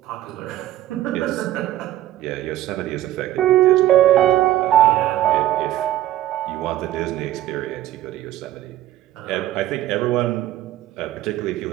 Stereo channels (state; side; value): quieter; left; 13.8 dB